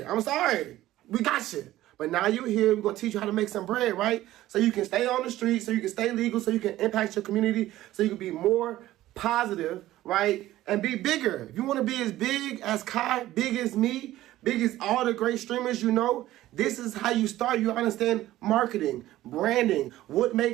I'm sorry. We got you. But now you're here, we're going to teach you how to make some bread, right? So you can stay on the street, so you can stay legal, so you can impact your community, so you can be more positive, right? And be bigger. If you want to be as big as Kai, big as me, big as all the great streamers you know, this is how you start. You understand marketing, branding, what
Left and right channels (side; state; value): left; quieter; 15.1 dB